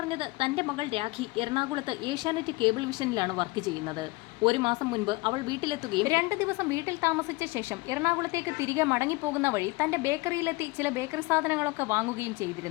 തന്റെ മകൾ രാഖി എറണാകുളത്ത് ഏഷ്യാനെറ്റ് കേബിൾ വിഷനിലാണ് വർക്ക് ചെയ്യുന്നത്. 1 മാസം മുൻപ് അവൾ വീട്ടിലെത്തുകയും 2 ദിവസം വീട്ടിൽ താമസിച്ച ശേഷം എറണാകുളത്തേക്ക് തിരികെ മടങ്ങിപ്പോകുന്ന വഴി തന്റെ ബേക്കറിയിലെത്തി ചില ബേക്കറി സാധനങ്ങളൊക്കെ വാങ്ങുകയും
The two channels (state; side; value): quieter; right; 23.6 dB